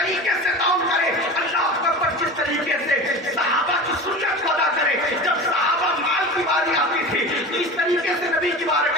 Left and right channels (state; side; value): normal; both; correlation 0.32